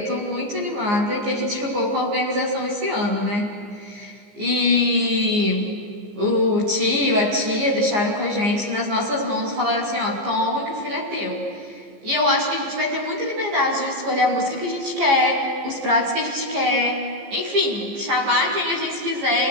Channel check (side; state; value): left; late; 15 ms